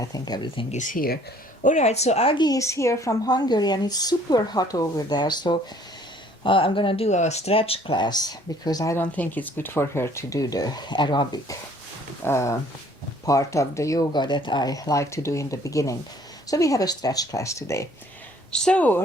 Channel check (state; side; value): normal; both; correlation 0.58